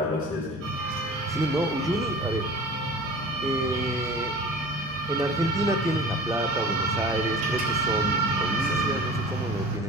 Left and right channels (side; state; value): both; normal; correlation 0.40